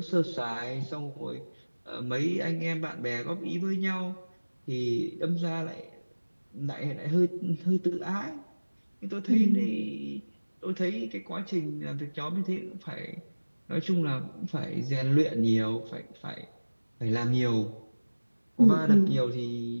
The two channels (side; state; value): both; inverted; correlation -1.00